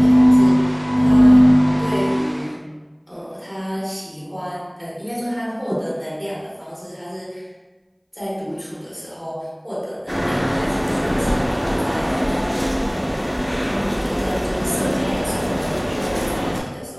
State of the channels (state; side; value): identical; both; correlation 1.00